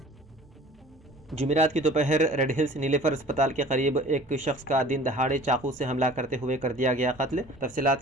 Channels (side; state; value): both; normal; correlation 0.46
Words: जुमेरात की दोपहर रेड हिल्स नीलेफर अस्पताल के करीब एक शख्स का दिन दहाड़े चाकू से हमला करते हुए कर दिया गया कत्ल। तफसीलात